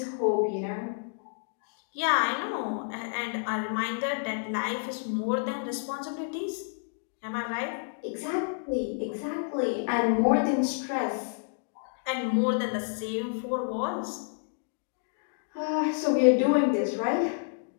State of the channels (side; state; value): right; silent; digital silence